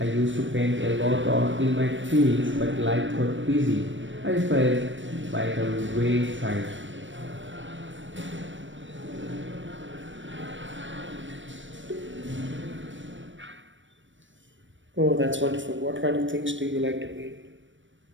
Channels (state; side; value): late; left; 0.55 ms